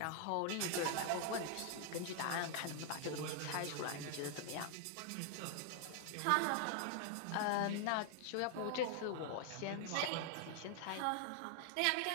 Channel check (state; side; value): different; both; correlation 0.00